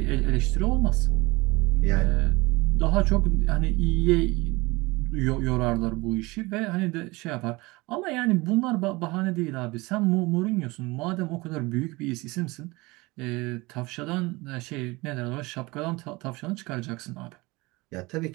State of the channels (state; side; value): quieter; left; 23.2 dB